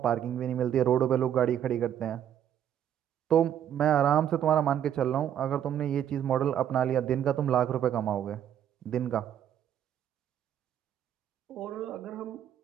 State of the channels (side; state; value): left; quieter; 10.0 dB